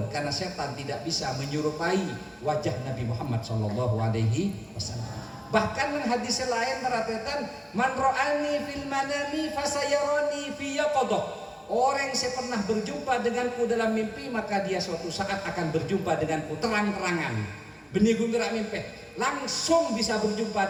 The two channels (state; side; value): identical; both; correlation 1.00